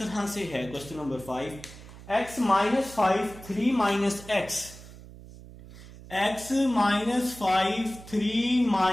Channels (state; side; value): noise; right; hum, 17 dB below the sound